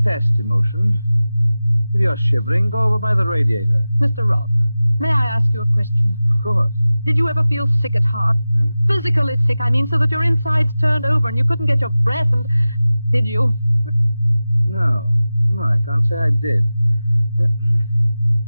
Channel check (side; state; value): both; inverted; correlation -0.96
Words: emotion. If you're shivering, go over by the radiator. Mr. Rolfe, may I ask you a question? Of course. Did you ever feel sick at heart? Huh? Physically sick, I mean, so that your insides turned over and you couldn't get your breath and... Did you? No, I can't say I did.